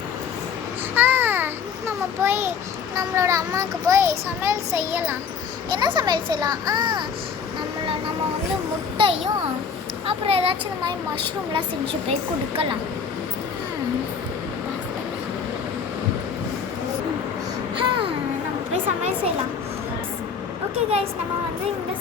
நம்ம போய் நம்மளோட அம்மாவுக்கு போய் சமையல் செய்யலாம். என்ன சமையல் செய்யலாம்? நம்ம வந்து முட்டையும் அப்புறம் ஏதாச்சும் இந்த மாதிரி மஷ்ரூம்லாம் செஞ்சு போய் கொடுக்கலாம். நம்ம போய் சமையல் செய்யலாம். ஓகே கைஸ், நம்ம வந்து இந்த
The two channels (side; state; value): right; quieter; 6.4 dB